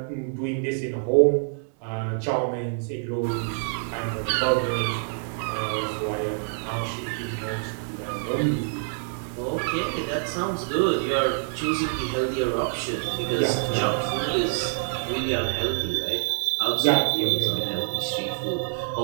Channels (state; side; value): silent; left; digital silence